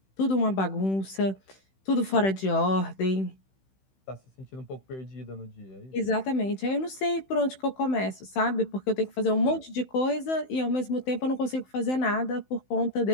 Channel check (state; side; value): late; right; 16 ms